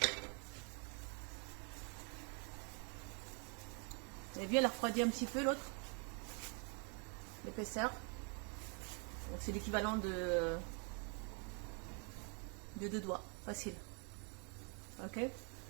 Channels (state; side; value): quieter; left; 37.0 dB